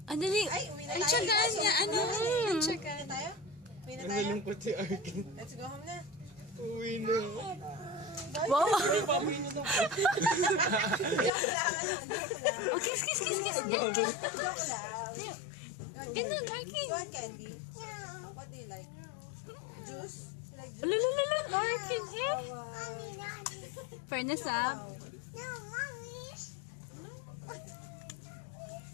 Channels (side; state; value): right; drops out; at 11.3 s